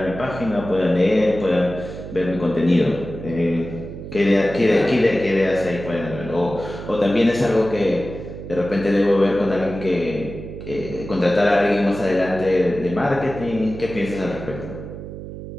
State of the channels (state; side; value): noise; right; hum, 11 dB below the sound